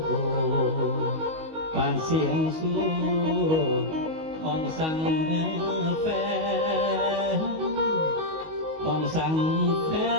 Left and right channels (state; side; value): late; left; 19 ms